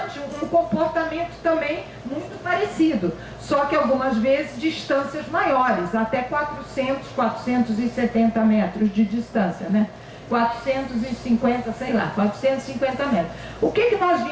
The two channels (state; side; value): identical; both; correlation 1.00